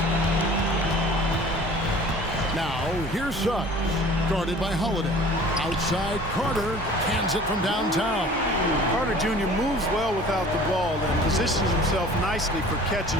Now, here's Suggs, guarded by Holiday. Outside, Carter hands it from downtown. Carter Jr. moves well without the ball and positions himself nicely for catch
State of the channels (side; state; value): both; normal; correlation 0.46